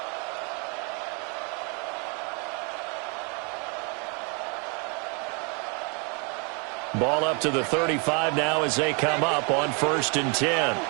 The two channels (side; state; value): left; quieter; 34.5 dB